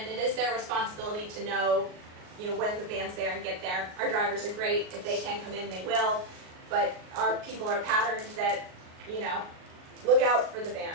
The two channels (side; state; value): left; late; 38 ms